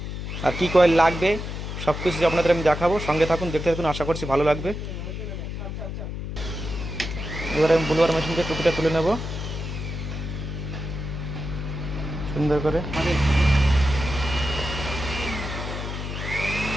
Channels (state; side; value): noise; left; hum, 6 dB below the sound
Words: আর কী কয়েল লাগবে সব কিছু আপনাদের আমি দেখাবো, সঙ্গে থাকুন, দেখতে থাকুন, আশা করছি ভালো লাগবে। এবার আমি বুলবার মেশিনকে টুপিটা তুলে নেব সুন্দর করে।